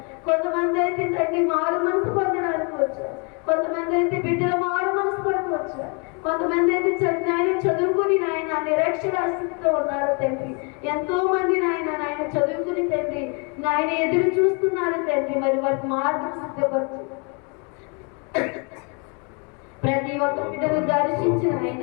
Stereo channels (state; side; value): quieter; right; 34.7 dB